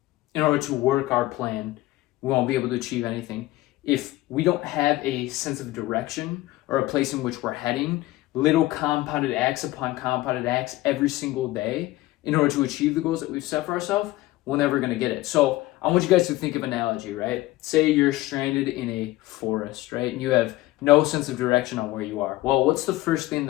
in order to work our plan, we won't be able to achieve anything. If we don't have a sense of direction or a place in which we're heading, little compounded acts upon compounded acts every single day in order to achieve the goals that we've set for ourselves, we're never going to get it. So I want you guys to think of an analogy, right? Say you're stranded in a forest, right? And you have no sense of direction on where you are. Well, what's the first thing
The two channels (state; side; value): quieter; right; 17.8 dB